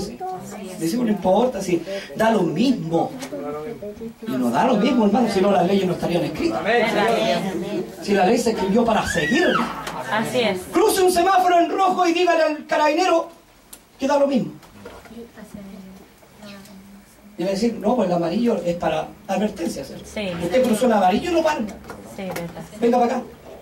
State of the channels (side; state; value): both; identical; correlation 1.00